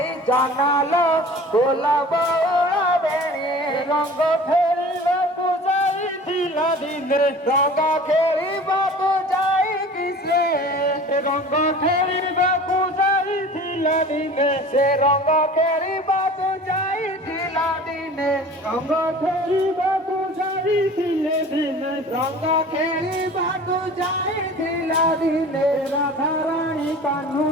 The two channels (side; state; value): both; normal; correlation 0.42